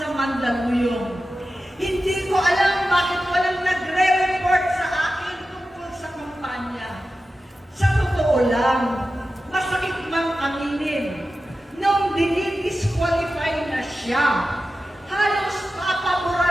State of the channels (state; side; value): normal; both; correlation 0.93